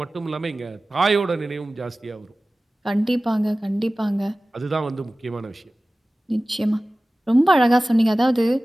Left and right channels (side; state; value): both; normal; correlation 0.97